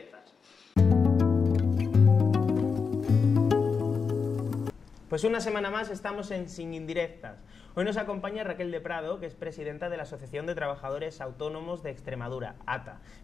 Pues una semana más estamos en Sin Indirectas. Hoy nos acompaña Raquel de Prado, que es presidenta de la Asociación de Trabajadores Autónomos de Extremadura, ATA.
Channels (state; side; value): quieter; right; 5.4 dB